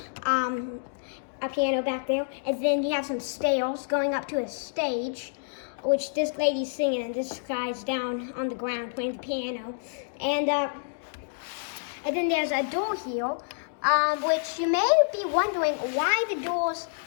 a piano back there, and then you have some stairs going up to a stage, which this lady's singing, and this guy's down on the ground playing the piano. And then there's a door here, which you may be wondering why the doors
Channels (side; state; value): right; silent; digital silence